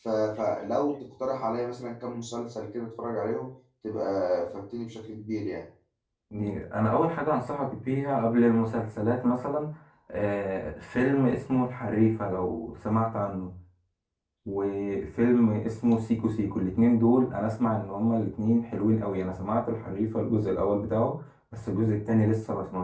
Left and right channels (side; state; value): both; identical; correlation 1.00